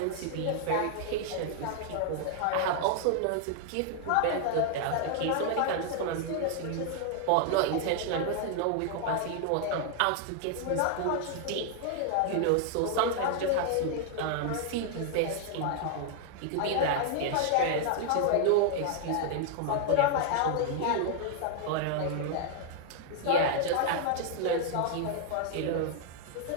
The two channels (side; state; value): both; different; correlation 0.00